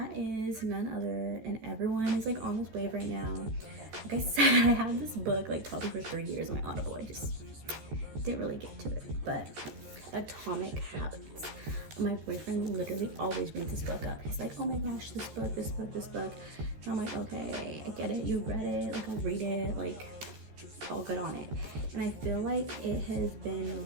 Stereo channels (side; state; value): left; late; 13 ms